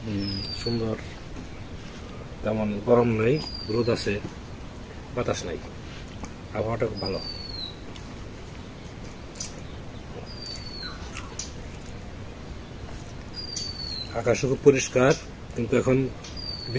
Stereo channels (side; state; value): both; identical; correlation 1.00